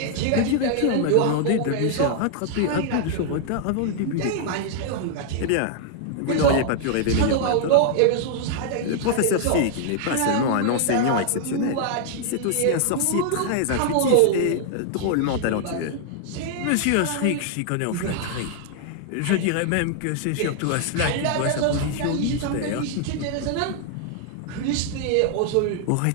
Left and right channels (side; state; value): both; different; correlation 0.00